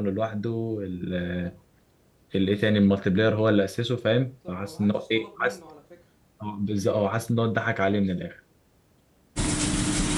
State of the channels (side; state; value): both; identical; correlation 1.00